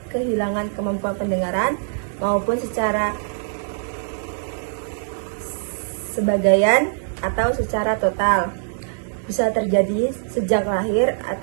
kehilangan kemampuan pendengaran maupun secara sebagian atau secara total. Bisa terjadi sejak lahir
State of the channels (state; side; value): silent; left; digital silence